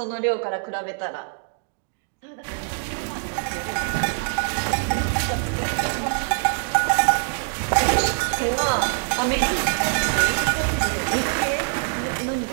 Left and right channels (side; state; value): left; silent; digital silence